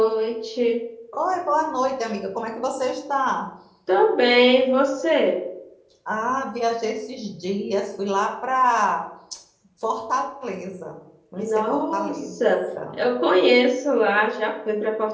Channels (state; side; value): identical; both; correlation 1.00